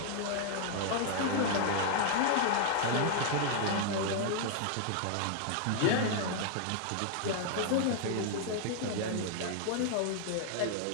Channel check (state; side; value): different; both; correlation 0.00